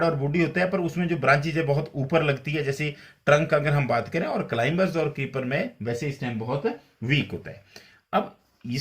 और वुडी होता है पर उसमें जो ब्रांचेज है बहुत ऊपर लगती है, जैसे ट्रंक अगर हम बात करें, और क्लाइंबर्स और क्रीपर में वैसे स्टेम बहुत वीक होता है। अब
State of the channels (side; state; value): both; identical; correlation 1.00